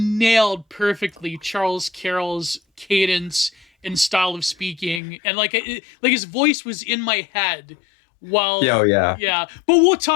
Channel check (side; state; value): right; drops out; at 5.0 s